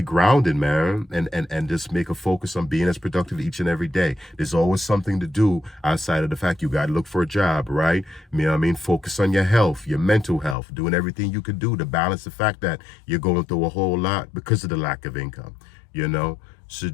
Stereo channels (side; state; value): right; drops out; at 10.6 s